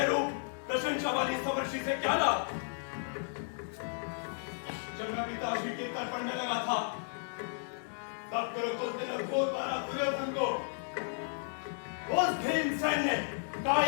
रूप प्रशंसा वाली समर्षि से क्या लाभ? जब मैं पिताजी के तर्पण में लगा था, तब कुरुकुल ने घोर मारा दुर्योधन को। उस भीमसेन ने,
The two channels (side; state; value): right; silent; digital silence